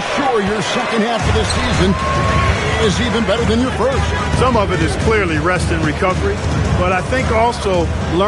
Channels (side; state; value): both; identical; correlation 1.00